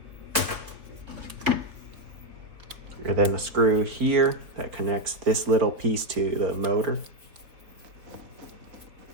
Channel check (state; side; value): late; left; 4.0 ms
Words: And then a screw here that connects this little piece to the motor.